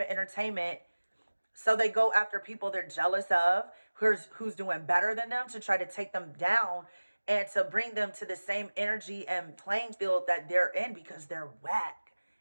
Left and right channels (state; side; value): inverted; both; correlation -1.00